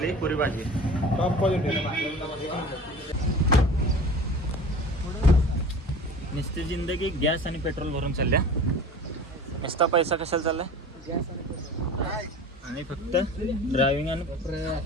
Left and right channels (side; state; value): both; normal; correlation 0.39